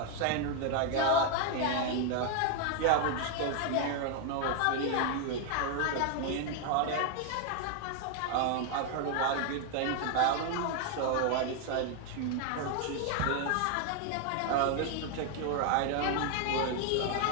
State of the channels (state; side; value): different; both; correlation 0.00